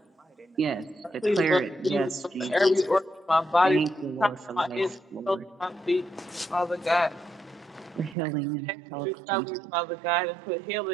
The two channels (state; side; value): drops out; left; at 8.2 s